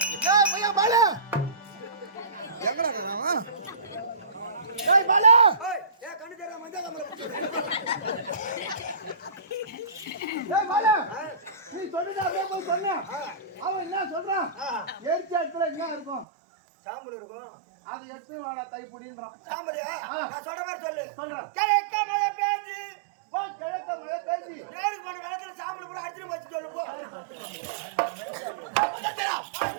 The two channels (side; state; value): left; drops out; at 16.2 s